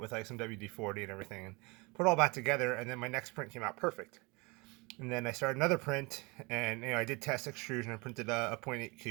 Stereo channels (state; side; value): quieter; left; 26.8 dB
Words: like some WD-40 and everything, and put it all back together, and then my next print came out perfect. And then I started another print, and I did test extrusion. I printed a 0.8